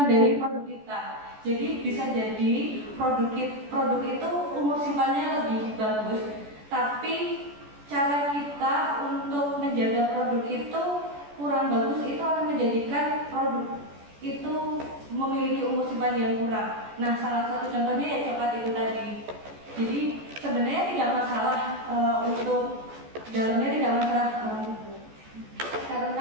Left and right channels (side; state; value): left; late; 14 ms